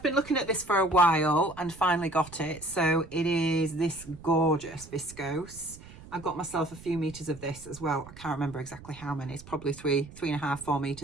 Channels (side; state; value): right; noise; rumble, 18 dB below the sound